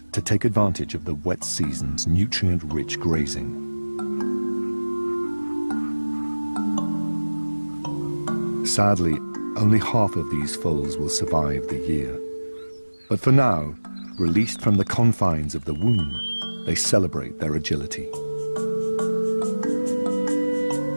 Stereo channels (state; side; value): inverted; both; correlation -1.00